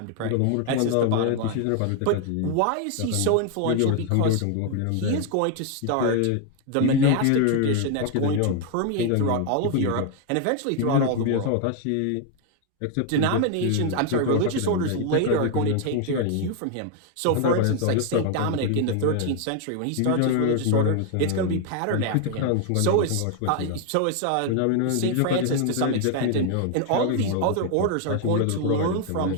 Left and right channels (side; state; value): both; different; correlation 0.00